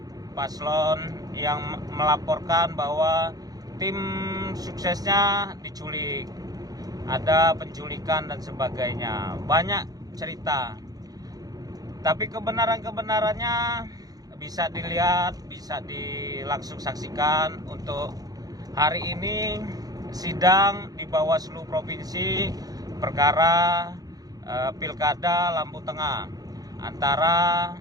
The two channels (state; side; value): late; left; 0.18 ms